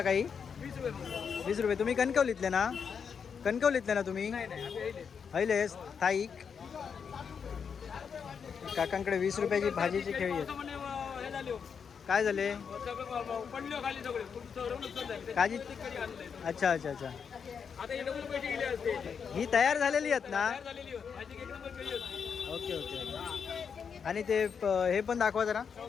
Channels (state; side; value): quieter; right; 6.6 dB